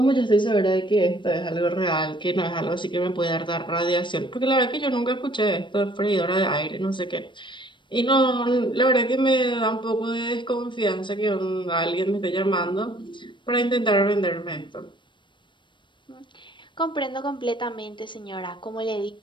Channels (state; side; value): late; right; 0.23 ms